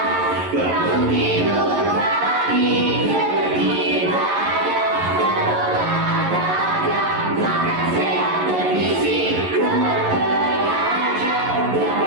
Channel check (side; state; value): left; late; 11 ms